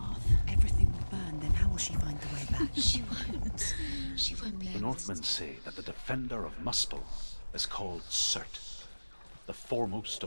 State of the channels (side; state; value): both; inverted; correlation -1.00